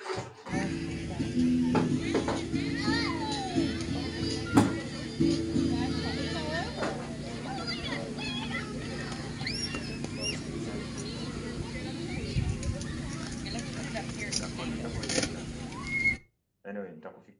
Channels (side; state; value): both; identical; correlation 1.00